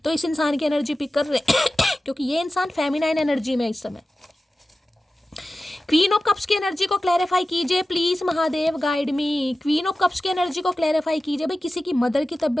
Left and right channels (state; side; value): normal; both; correlation 0.94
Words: तो इस इंसान की एनर्जी पिक कर रहे हैं क्योंकि ये इंसान फेमिनाइन एनर्जी में इस समय। क्वीन ऑफ कप्स की एनर्जी को क्लैरिफाई कीजिए please Mahadev guide me. Queen of cups की एनर्जी को क्लैरिफाई कीजिए। भाई किसी की मदर की